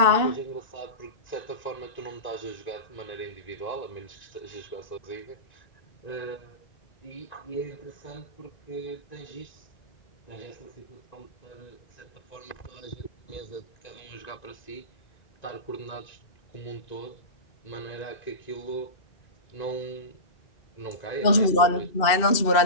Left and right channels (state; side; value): late; right; 2.6 ms